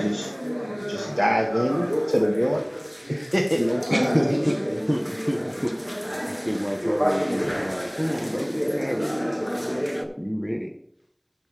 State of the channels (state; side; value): identical; both; correlation 1.00